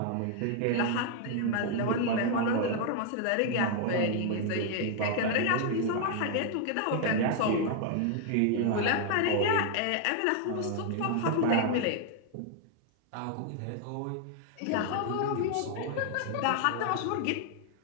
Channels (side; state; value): both; different; correlation 0.00